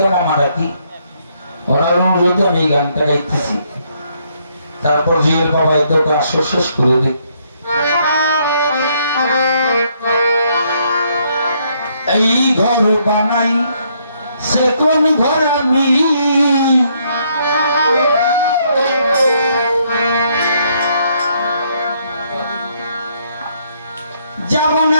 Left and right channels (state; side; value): inverted; both; correlation -0.71